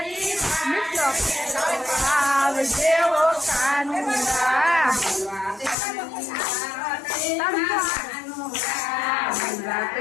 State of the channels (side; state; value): right; drops out; at 5.8 s